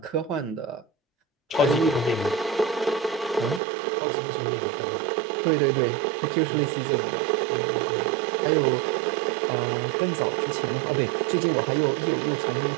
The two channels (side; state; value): left; drops out; at 3.6 s